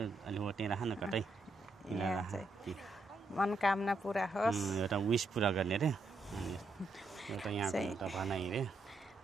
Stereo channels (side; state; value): left; quieter; 3.0 dB